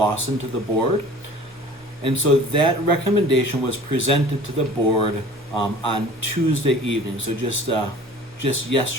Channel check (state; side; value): normal; both; correlation 0.45